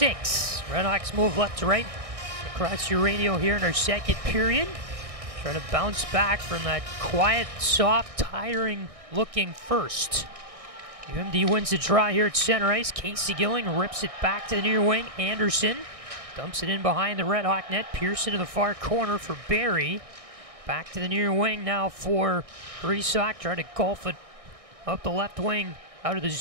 RedHawks move left to right across your radio here in our second period. Trying to bounce back from that quiet, soft, tiring looking first. UMD wins the draw here at center ice. Casey Gilling rips it back to the near wing. Anderson dumps it in behind the RedHawk net. Pearson to the far corner for Barry. Back to the near wing now for Resock. Tried to golf it up the left wing out of the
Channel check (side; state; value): left; late; 1.6 ms